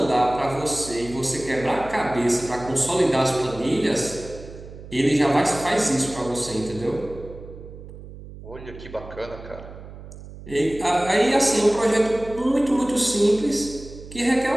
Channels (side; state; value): right; noise; hum, 15 dB below the sound